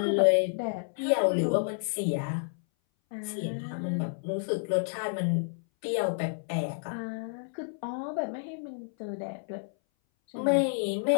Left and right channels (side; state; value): right; silent; 58 dB below the other